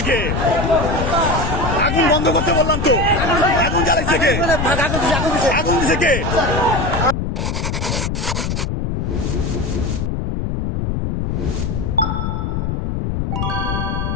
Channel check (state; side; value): noise; left; rumble, 1 dB below the sound